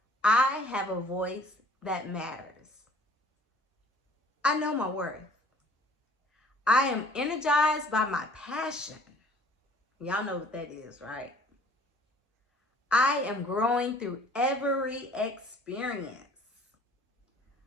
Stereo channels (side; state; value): both; normal; correlation 0.54